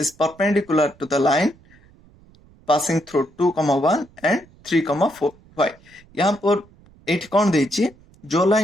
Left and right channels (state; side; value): noise; right; rumble, 28 dB below the sound